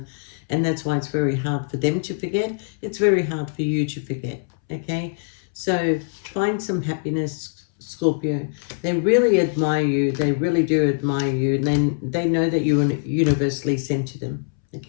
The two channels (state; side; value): silent; right; 64 dB below the other